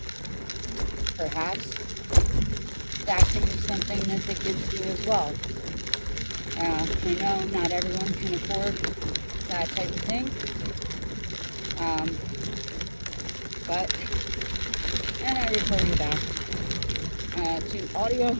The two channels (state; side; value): inverted; both; correlation -1.00